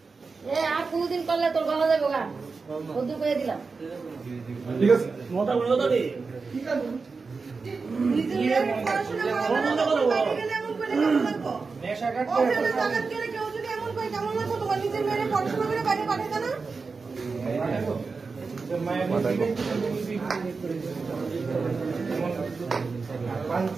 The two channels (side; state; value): left; quieter; 4.5 dB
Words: আর কোনদিন করলে তোর গলা যাবে গা কদ্দুর করে দিলাম ঠিক আছে মোটা বলে দাও রে ঠিক আছে নেশা কাটতে কেউ যদি এমন করে কেমন লাগতো তোমার নিজের মেয়ের পড়াশোনা করে বাইরে পাঠাতে না